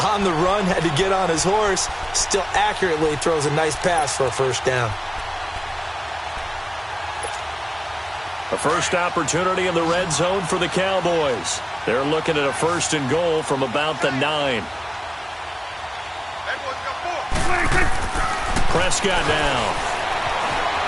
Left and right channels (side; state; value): both; identical; correlation 1.00